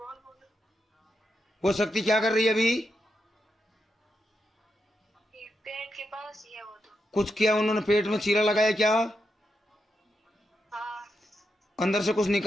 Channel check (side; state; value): both; normal; correlation 0.85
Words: बोल। वो शक्ति क्या कर रही है अभी? ये पेट के पास ही है वो तो। कुछ किया उन्होंने, पेट में चीरा लगाया क्या? हाँ। अंदर से कुछ